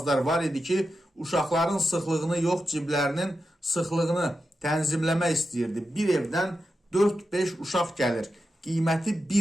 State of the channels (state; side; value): normal; both; correlation 0.90